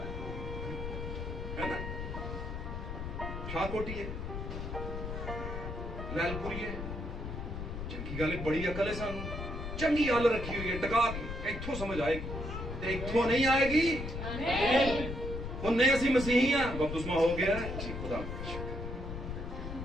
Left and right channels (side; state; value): left; noise; rumble, 6 dB below the sound